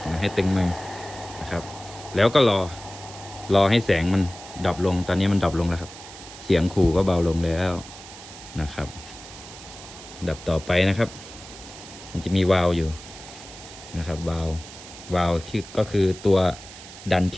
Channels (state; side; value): noise; right; hiss, 16 dB below the sound